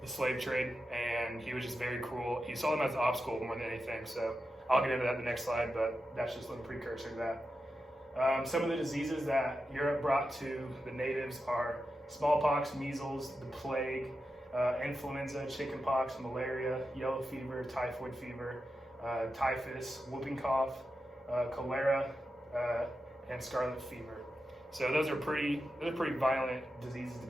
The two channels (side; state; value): both; normal; correlation 0.90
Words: the slave trade, and he was just very cruel. He saw them as an obstacle more than anything. So I'll get into that in the next slide, but that's just a little precursor to that. Some of the diseases that Europe brought to the natives are smallpox, measles, the plague, influenza, chickenpox, malaria, yellow fever, typhoid fever, typhus, whooping cough, cholera, and scarlet fever. So those are pretty violent diseases to